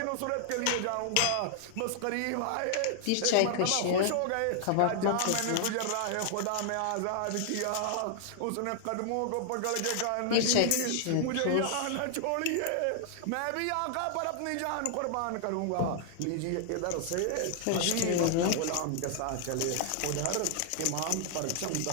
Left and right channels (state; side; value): different; both; correlation 0.00